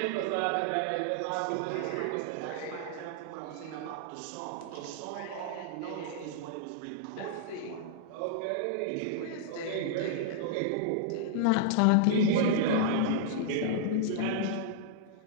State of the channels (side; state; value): both; different; correlation -0.01